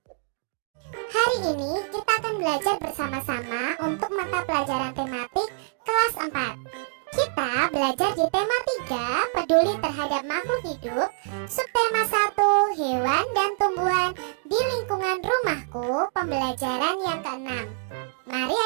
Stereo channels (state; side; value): silent; left; digital silence